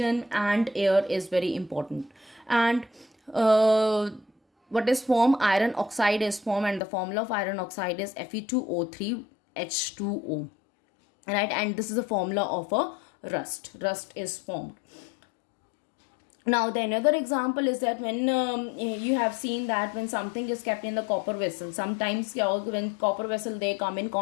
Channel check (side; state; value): right; drops out; at 6.8 s